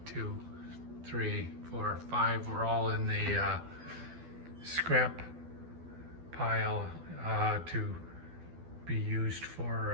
2, 3, 4, 5 were all in the scrap pile to be used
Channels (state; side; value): late; left; 12 ms